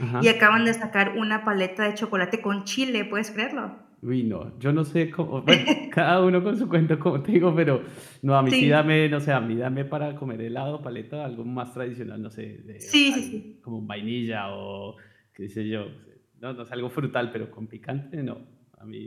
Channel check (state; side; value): identical; both; correlation 1.00